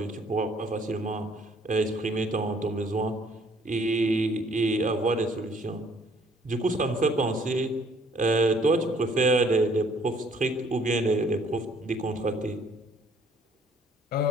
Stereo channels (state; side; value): normal; both; correlation 0.61